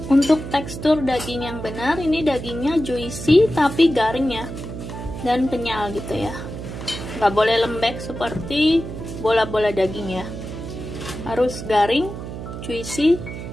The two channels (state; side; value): noise; right; hum, 8 dB below the sound